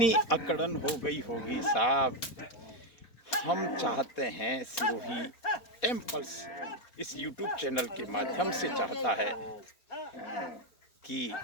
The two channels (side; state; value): right; late; 4.4 ms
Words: अकड़न हो गई होगी साहब। हम चाहते हैं, सिरोही टेम्पल्स इस YouTube चैनल के माध्यम से चाहता है कि